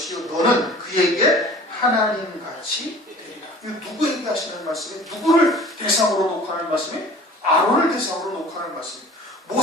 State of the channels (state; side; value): normal; both; correlation 0.46